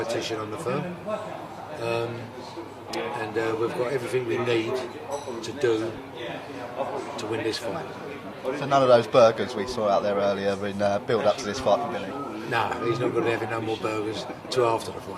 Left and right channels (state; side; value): identical; both; correlation 1.00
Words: on the firm. And we've got everything we need to do to win this fight. So none of those burgers we saw out there earlier in build up to this fight for Billy? No, he's not going to be having no more burgers till after the